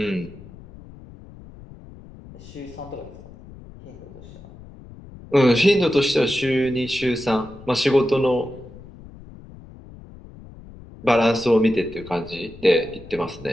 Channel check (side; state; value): left; noise; rumble, 18 dB below the sound